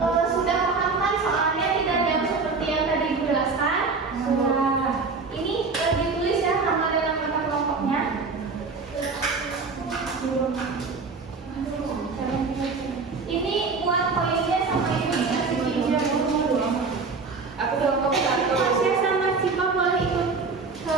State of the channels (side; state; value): left; quieter; 4.4 dB